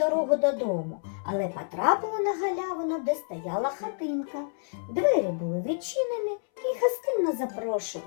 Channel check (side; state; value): right; silent; 59 dB below the other